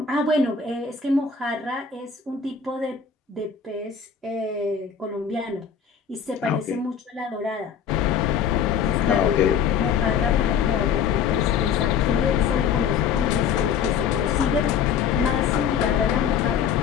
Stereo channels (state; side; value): quieter; right; 7.2 dB